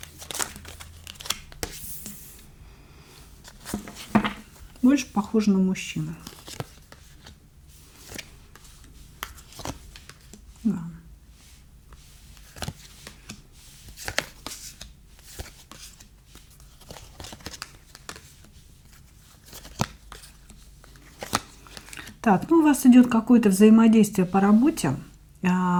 Больше похоже на мужчину. Да. Так, ну у вас идет какое-то взаимодействие по работе.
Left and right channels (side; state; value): both; identical; correlation 1.00